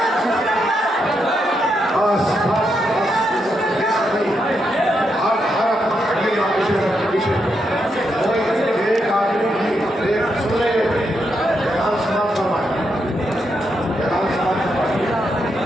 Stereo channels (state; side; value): normal; both; correlation 0.81